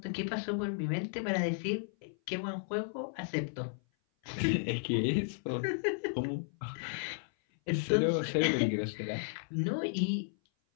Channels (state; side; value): silent; right; 55 dB below the other